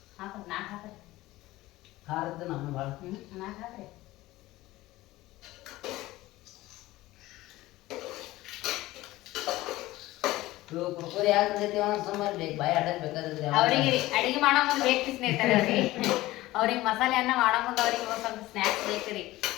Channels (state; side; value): quieter; right; 17.7 dB